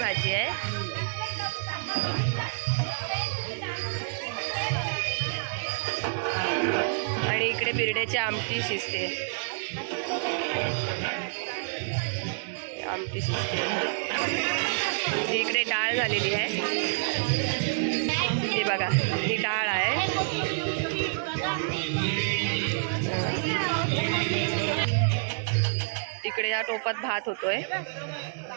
आहे. आणि इकडे बिरड्याची आमटी शिजते. आमटी शिजते. इकडे डाळ झालेली आहे. ही बघा ही डाळ आहे. इकडे या टोपात भात होतोय.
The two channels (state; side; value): silent; left; 59 dB below the other